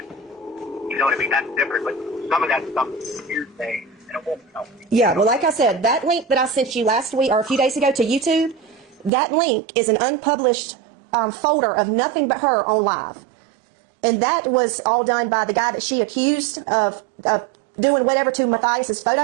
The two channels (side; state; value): left; drops out; at 9.1 s